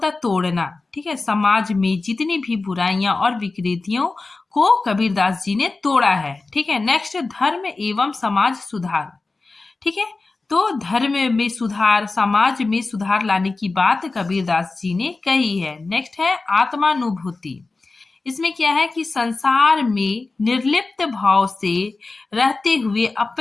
है तोड़ना। ठीक है, समाज में जितनी भी बुराइयां और विकृतियों को कबीरदास जी ने तोड़ा है। ठीक है, नेक्स्ट धर्म एवं समाज सुधार। ठीक है, तो धर्म में सुधार, समाज में सुधार लाने की बात कबीरदास जी ने कही है। नेक्स्ट है आत्मानुभूति। इसमें क्या है कि संसार में निर्लिप्त भाव से रहते हुए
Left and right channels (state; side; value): quieter; right; 3.6 dB